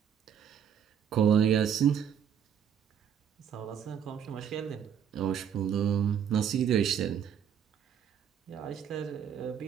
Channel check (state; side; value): quieter; left; 8.5 dB